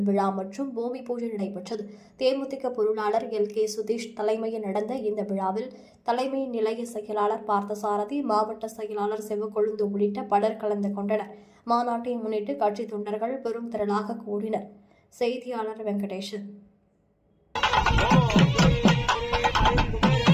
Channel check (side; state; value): both; identical; correlation 1.00